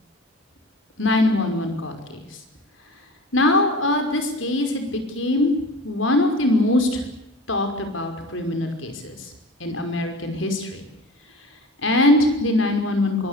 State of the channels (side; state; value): both; normal; correlation 0.38